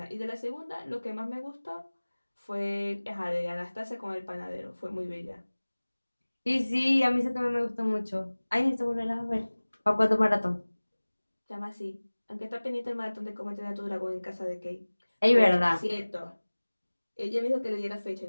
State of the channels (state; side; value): inverted; both; correlation -1.00